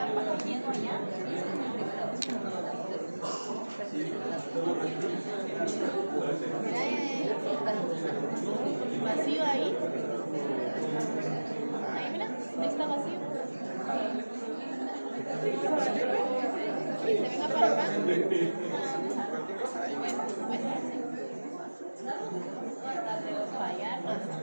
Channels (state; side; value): inverted; both; correlation -1.00